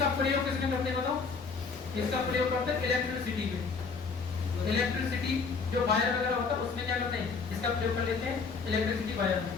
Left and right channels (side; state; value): right; quieter; 5.0 dB